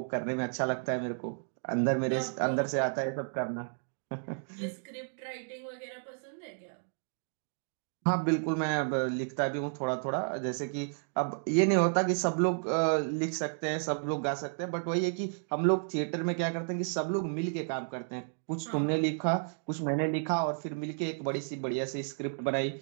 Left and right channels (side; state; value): left; silent; digital silence